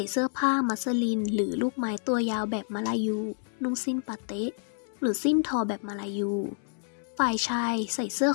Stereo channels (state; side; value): silent; right; 59 dB below the other